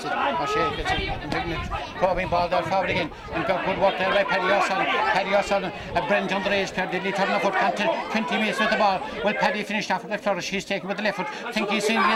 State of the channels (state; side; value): identical; both; correlation 1.00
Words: it. O'Shea gets it. And taking it. Probing ball down forward again. And got good work there by Paddy O'Sullivan. Paddy O'Sullivan, a brilliant underage player. Did he turn the foot? Got to 20 metres with the ball. Well, Paddy finished off with the flourish. He's taken with the left foot. Think he's seeing the